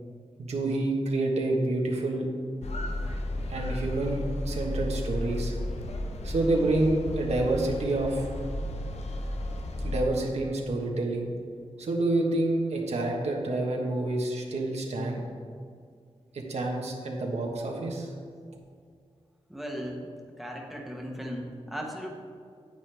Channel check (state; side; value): normal; both; correlation 0.81